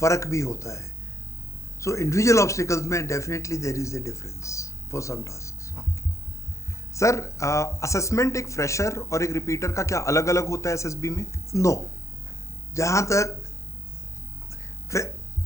भी होता है। सो इंडिविजुअल ऑब्स्टिकल्स में definitely there is a difference for some tasks. Sir assessment एक फ्रेशर और एक रिपीटर का क्या अलग अलग होता है एसएसबी में? नो, जहाँ तक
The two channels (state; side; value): late; right; 0.15 ms